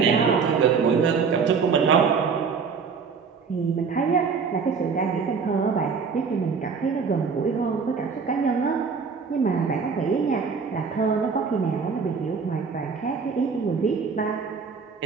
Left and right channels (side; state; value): left; quieter; 5.6 dB